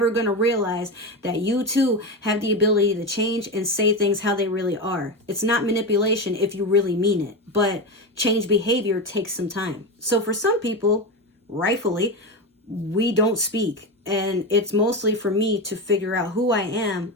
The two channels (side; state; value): both; normal; correlation 0.17